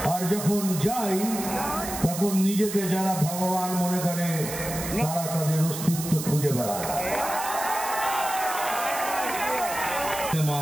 আর যখন যাই তখন নিজেকে যারা ভগবান মনে করে তারা তাদের অস্তিত্ব খুঁজে বেড়ায়।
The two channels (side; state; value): right; noise; hiss, 7 dB below the sound